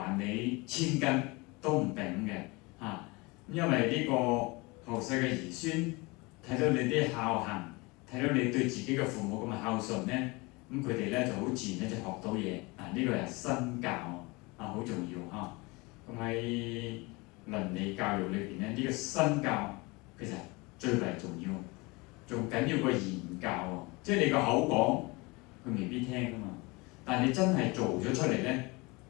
你1000斤都唔定嘅因為呢個後世嘅兒孫睇到你啲孝行，睇到你對自己嘅父母咁嘅孝順咧，咁佢哋咧就好自然咧就學到嘢呢個係身教好重要嚇。咁喺倫理教育裏邊咧，呢個身教其實最為重要，仲緊要過言教喎。即係你個口講，佢未必聽噶嘛，但係你真係做咗出嚟咧。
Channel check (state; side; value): quieter; right; 25.4 dB